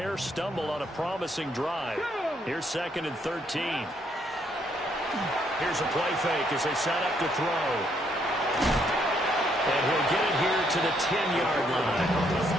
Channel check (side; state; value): both; normal; correlation 0.71